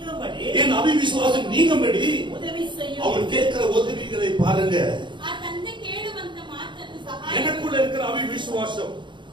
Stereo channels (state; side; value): late; left; 0.23 ms